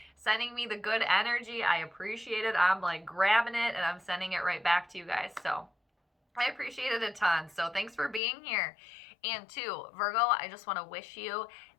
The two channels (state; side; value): drops out; right; at 8.2 s